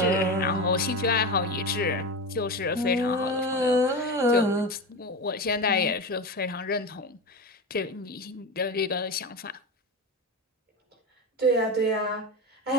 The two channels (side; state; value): both; normal; correlation 0.21